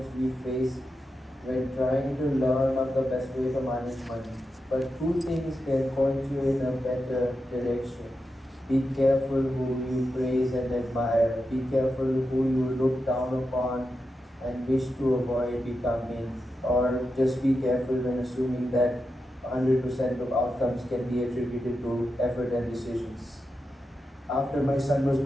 we face when trying to learn on the best way to manage money. But two things can point you in a better direction. Be careful who you praise and admire. Be careful who you look down upon and wish to avoid becoming. Or just be careful when assuming that 100% of outcomes can be attributed to effort and decisions. After my son was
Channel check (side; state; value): both; normal; correlation 0.89